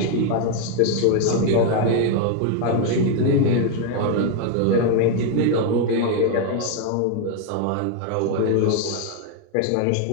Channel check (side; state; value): both; different; correlation 0.01